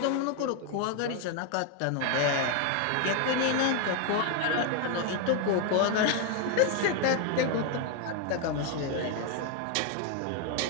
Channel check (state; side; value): different; both; correlation 0.01